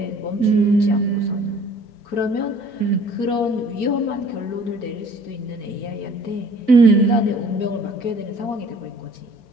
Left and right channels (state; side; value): late; right; 4.4 ms